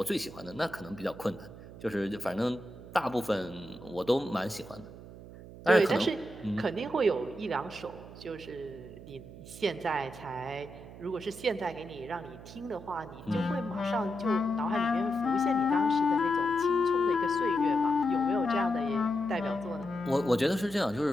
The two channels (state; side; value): noise; right; hum, 15 dB below the sound